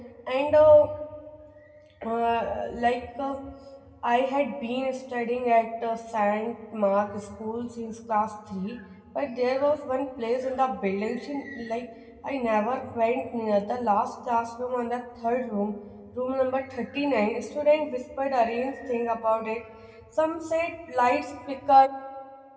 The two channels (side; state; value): both; identical; correlation 1.00